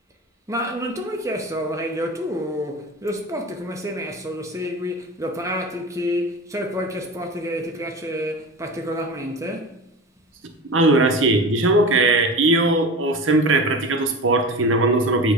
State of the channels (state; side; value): normal; both; correlation 0.30